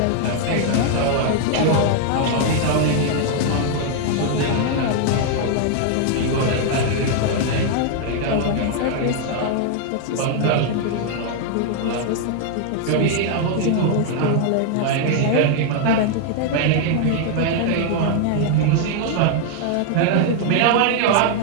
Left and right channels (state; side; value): different; both; correlation 0.00